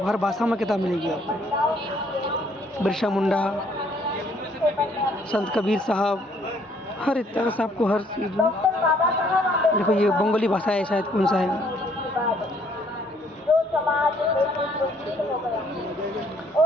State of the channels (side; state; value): both; normal; correlation 0.64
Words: हर भाषा में किताब मिलेगी आपको। बिरसा मुंडा, संत कबीर साहब, हर एक तरह से आपको हर चीज़ में। देखो ये बंगाली भाषा है शायद, कौन सा है,